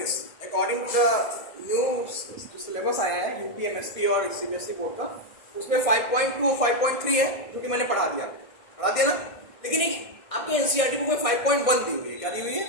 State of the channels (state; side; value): late; right; 1.6 ms